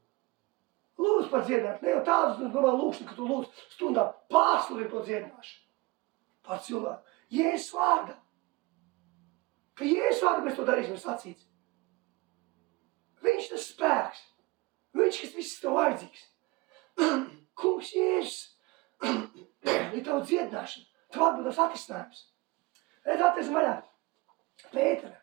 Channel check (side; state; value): left; quieter; 23.1 dB